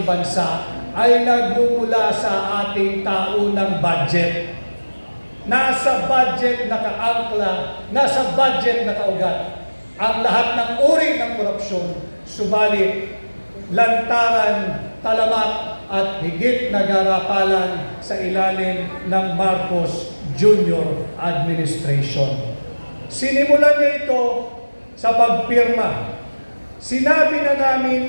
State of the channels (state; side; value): inverted; both; correlation -1.00